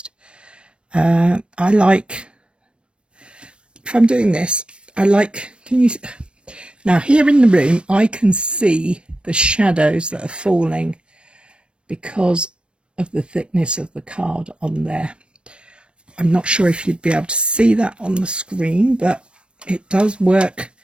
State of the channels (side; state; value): left; late; 0.058 ms